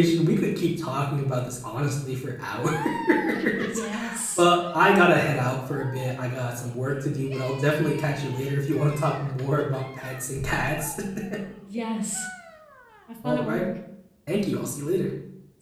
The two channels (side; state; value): both; identical; correlation 1.00